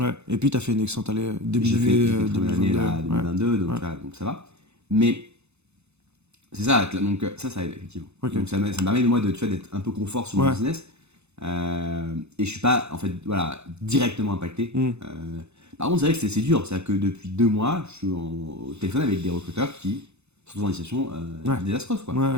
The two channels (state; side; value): late; left; 0.81 ms